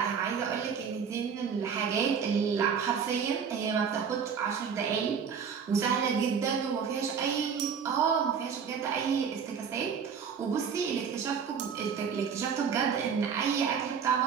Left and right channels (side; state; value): left; quieter; 6.7 dB